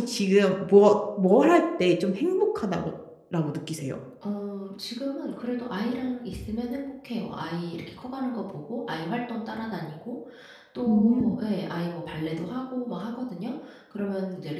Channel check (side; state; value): both; identical; correlation 1.00